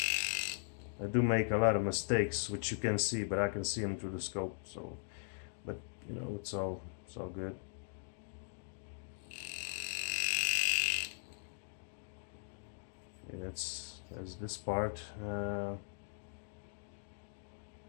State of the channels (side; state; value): right; silent; digital silence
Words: I do make a lot of mistakes, which you can see, but I can see them through the scope. So, but you know, it's all good. Okay, that's this part.